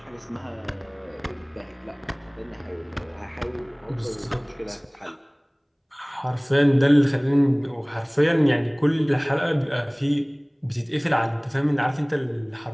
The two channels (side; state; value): both; identical; correlation 1.00